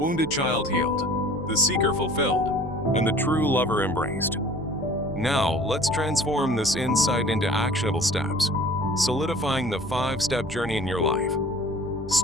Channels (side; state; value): right; noise; rumble, 19 dB below the sound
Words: child healed, the seeker fulfilled, and the true lover embraced. Now, let's transform this insight into actionable steps, solidifying the 5-step journey in your life.